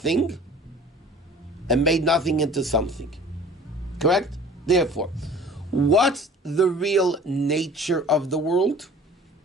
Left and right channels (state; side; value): normal; both; correlation 0.46